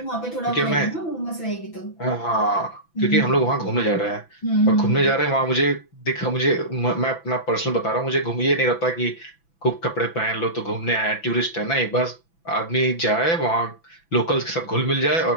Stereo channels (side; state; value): right; late; 6.0 ms